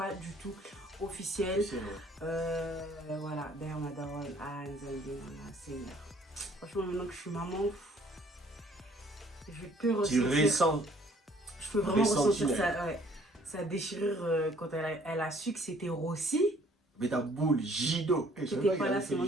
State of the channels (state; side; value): normal; both; correlation 0.59